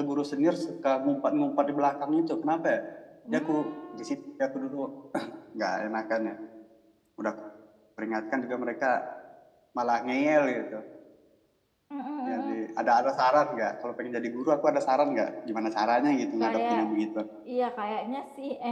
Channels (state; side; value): identical; both; correlation 1.00